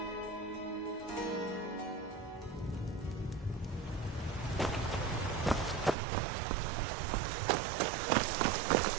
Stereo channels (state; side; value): drops out; left; at 6.0 s